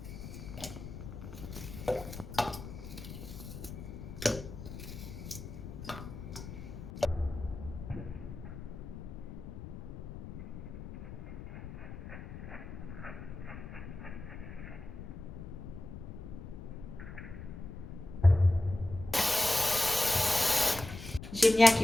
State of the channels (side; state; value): left; noise; rumble, 10 dB below the sound